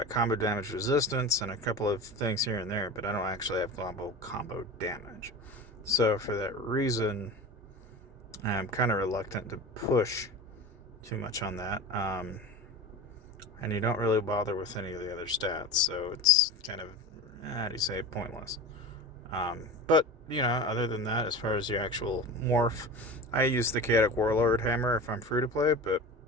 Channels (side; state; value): both; normal; correlation 0.30